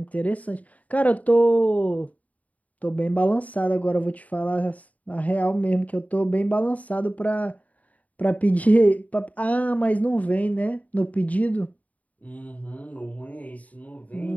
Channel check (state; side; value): late; right; 0.071 ms